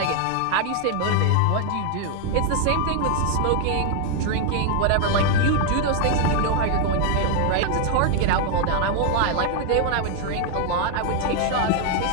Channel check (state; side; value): different; both; correlation 0.00